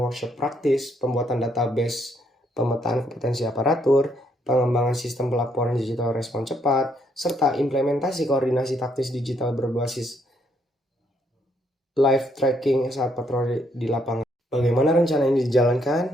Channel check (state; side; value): normal; both; correlation 0.72